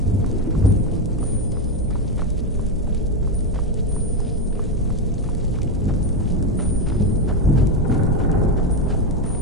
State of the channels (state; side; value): normal; both; correlation 0.10